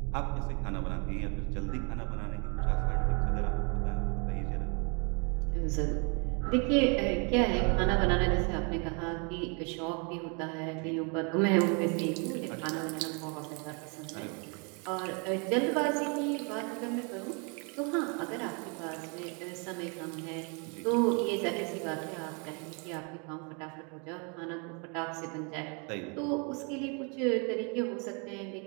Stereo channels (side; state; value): left; quieter; 34.8 dB